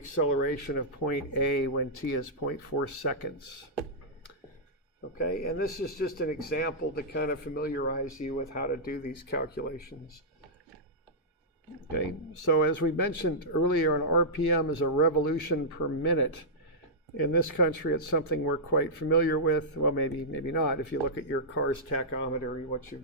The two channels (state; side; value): normal; both; correlation -0.12